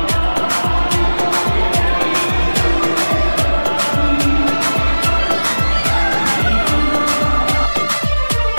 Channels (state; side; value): inverted; both; correlation -1.00